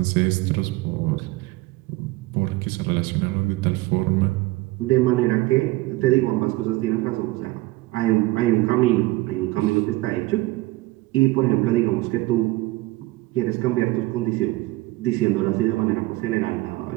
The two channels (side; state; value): left; quieter; 19.8 dB